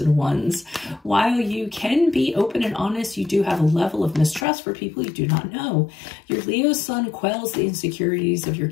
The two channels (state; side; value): drops out; right; at 4.5 s